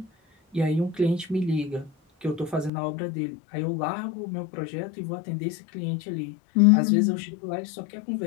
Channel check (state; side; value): drops out; right; at 2.7 s